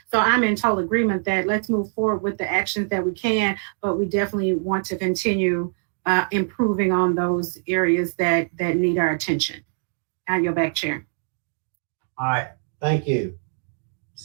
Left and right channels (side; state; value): left; silent; digital silence